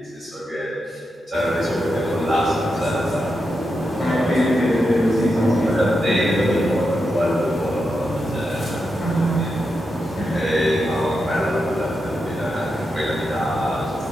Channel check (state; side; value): normal; both; correlation 0.87